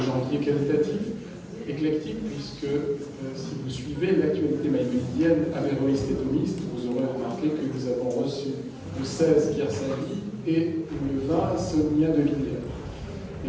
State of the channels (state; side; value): identical; both; correlation 1.00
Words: janvier qualitatif, éclectique, puisque si vous suivez l'actualité maïmonidienne, avéroïste et thomiste, vous aurez remarqué que nous avons reçu le 16 Pierre Savy et le 20 Sonia de Villiers. Et